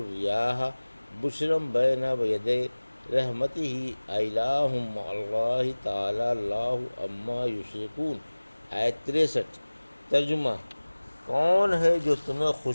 بشرا بین یدی رحمتہ الہ مع اللہ تعالی اللہ عما یشرکون۔ آیت 63۔ ترجمہ: کون ہے جو تمہیں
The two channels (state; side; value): inverted; both; correlation -1.00